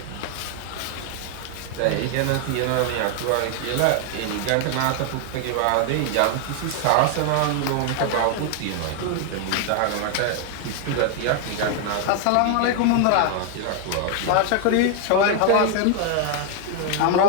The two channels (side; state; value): both; different; correlation 0.00